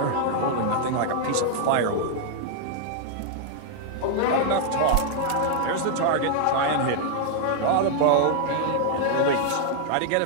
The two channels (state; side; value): different; both; correlation -0.01